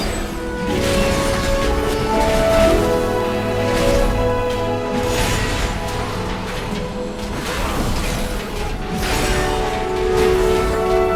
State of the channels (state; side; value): identical; both; correlation 1.00